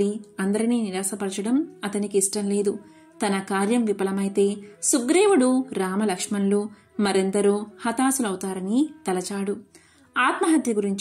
అందరినీ నిరాశపరచడం అతనికి ఇష్టం లేదు. తన కార్యం విఫలమైతే సుగ్రీవుడు, రామలక్ష్మణులు మరెందరో హతాశులవుతారని తలచాడు. ఆత్మహత్య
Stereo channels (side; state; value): both; identical; correlation 1.00